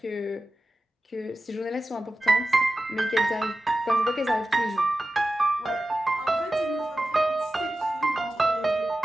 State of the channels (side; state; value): both; normal; correlation 0.94